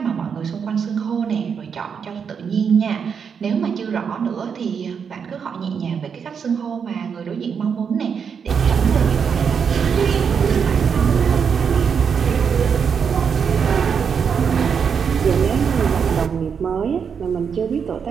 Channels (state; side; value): quieter; left; 6.7 dB